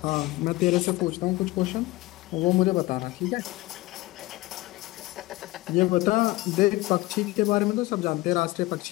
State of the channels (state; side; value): quieter; right; 19.7 dB